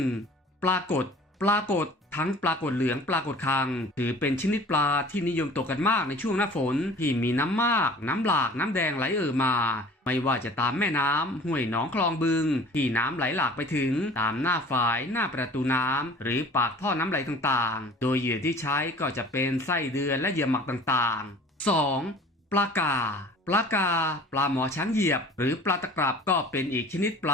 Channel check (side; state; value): both; normal; correlation 0.46